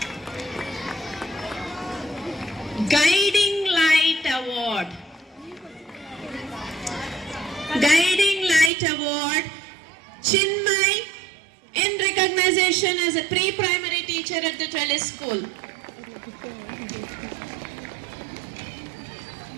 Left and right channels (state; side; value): drops out; left; at 8.7 s